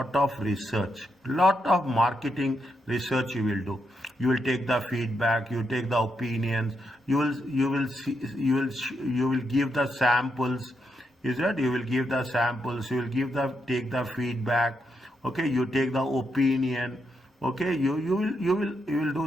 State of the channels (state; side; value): normal; both; correlation 0.81